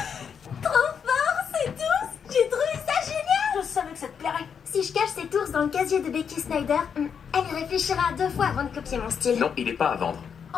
Trop fort, ces ours! J'ai trouvé ça génial! Je savais que ça te plairait. Si je cache cet ours dans le casier de Becky Snyder, elle y réfléchira 2 fois avant de copier mon style. Non, il n'est pas à vendre.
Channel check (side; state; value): right; quieter; 7.1 dB